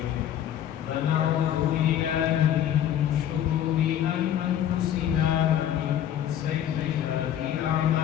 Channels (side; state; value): right; quieter; 10.6 dB